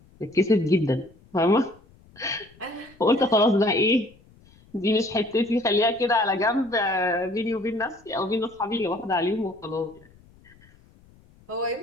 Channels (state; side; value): noise; left; rumble, 28 dB below the sound